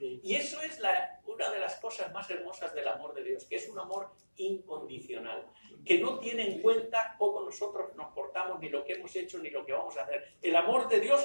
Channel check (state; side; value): inverted; both; correlation -1.00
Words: eso es una de las cosas más hermosas del amor de Dios, que es un amor incondicional, que no tiene en cuenta cómo nosotros nos portamos, ni lo que hemos hecho, ni lo que vamos a hacer. El amor de